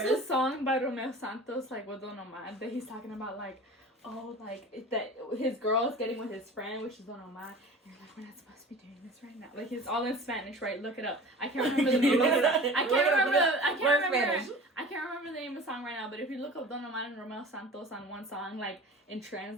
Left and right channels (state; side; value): normal; both; correlation 0.39